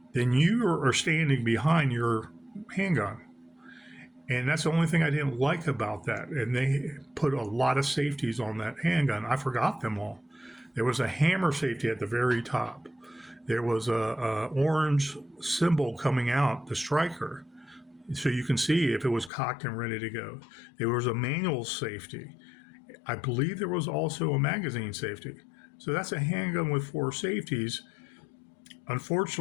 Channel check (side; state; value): right; drops out; at 19.3 s